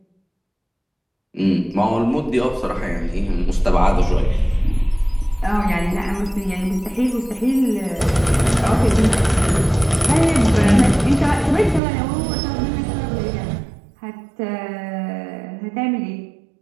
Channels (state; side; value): drops out; left; at 11.8 s